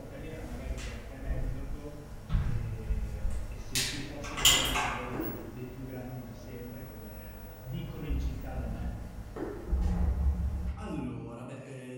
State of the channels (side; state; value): both; identical; correlation 1.00